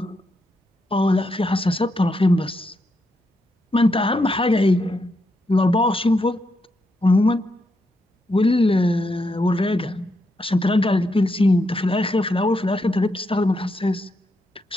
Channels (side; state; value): both; normal; correlation 0.81